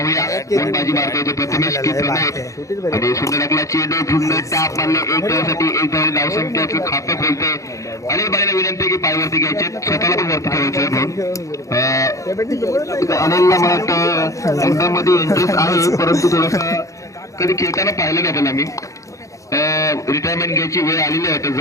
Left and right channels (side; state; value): right; late; 0.15 ms